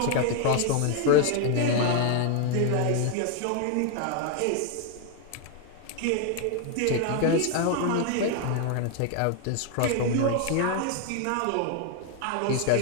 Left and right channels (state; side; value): different; both; correlation 0.01